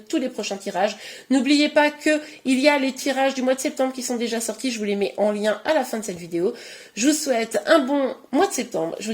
les prochains tirages. N'oubliez pas qu'il y a les tirages du mois de septembre qui sont déjà sortis. Je vous les mets en lien à la fin de cette vidéo. Je vous souhaite un bon mois de septembre. Je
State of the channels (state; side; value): identical; both; correlation 1.00